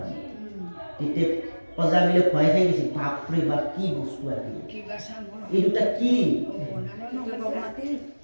তেতিয়া অজামিলে ভয় খাই গৈছিল বাপৰে বাপ কি বস্তু আহিল এই দুটা কি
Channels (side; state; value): both; inverted; correlation -1.00